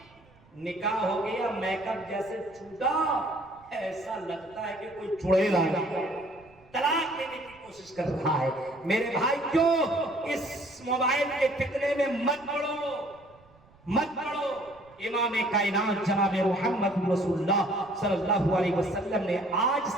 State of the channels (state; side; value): noise; right; rumble, 29 dB below the sound